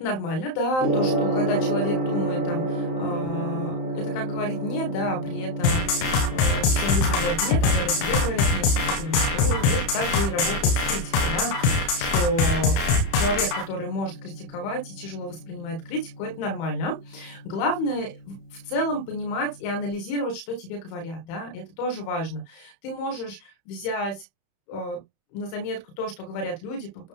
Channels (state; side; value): late; right; 31 ms